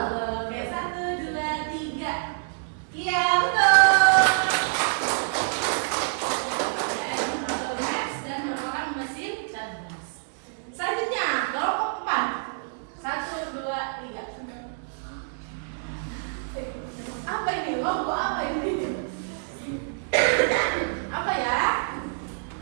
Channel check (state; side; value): silent; left; digital silence